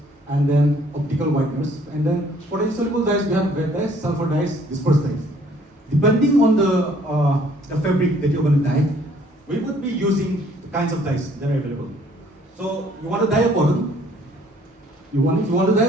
and then optical whiteners. And then for the insoluble dyes, we have wet dyes, sulfur dyes, dispersed dyes. Depending on the fabric that you're going to dye, we would be using the kinds of dyes that are available. So you want to dye a cotton. If you want to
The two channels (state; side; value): normal; both; correlation 0.60